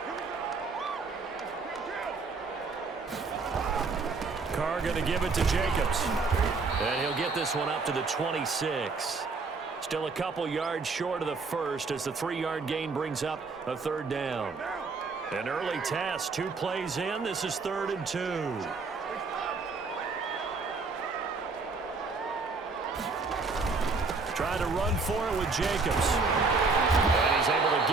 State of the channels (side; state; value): left; quieter; 4.2 dB